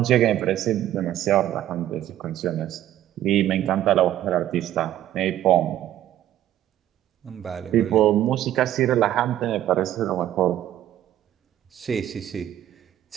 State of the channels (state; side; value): quieter; left; 12.4 dB